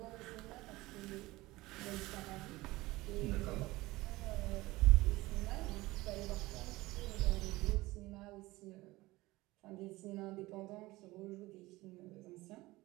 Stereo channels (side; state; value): left; quieter; 19.7 dB